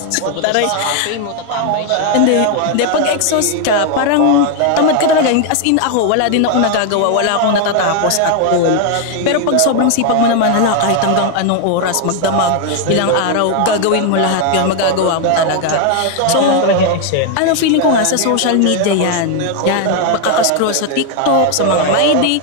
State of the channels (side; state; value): both; different; correlation 0.01